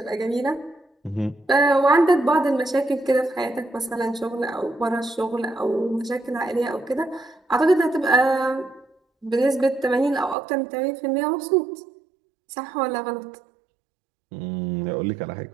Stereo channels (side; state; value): left; drops out; at 10.4 s